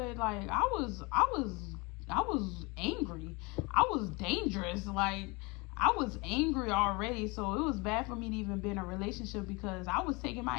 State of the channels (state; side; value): quieter; right; 26.9 dB